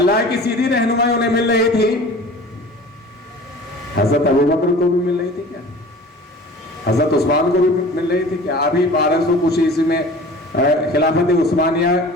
کی سیدھی رہنمائی انہیں مل رہی تھی، حضرت ابوبکر کو بھی مل رہی تھی کیا؟ حضرت عثمان کو بھی مل رہی تھی کیا؟ ابھی 1200 کچھ عیسوی میں خلافت عثمانیہ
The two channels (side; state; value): both; normal; correlation 0.42